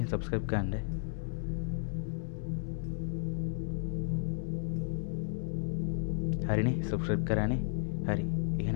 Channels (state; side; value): silent; right; digital silence